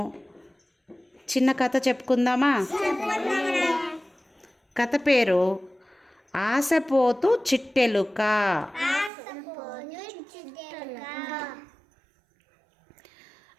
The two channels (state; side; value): drops out; left; at 9.1 s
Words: చిన్న కథ చెప్పుకుందామా? కథ పేరు ఆశపోతు చిట్టెలుక.